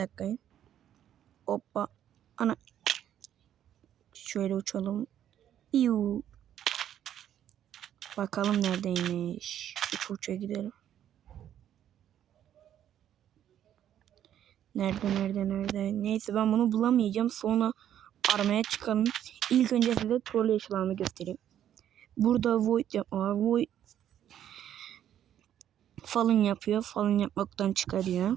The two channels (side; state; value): left; quieter; 10.6 dB